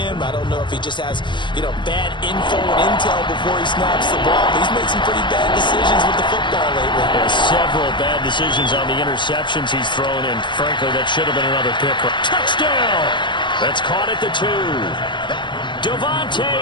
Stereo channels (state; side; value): late; right; 0.23 ms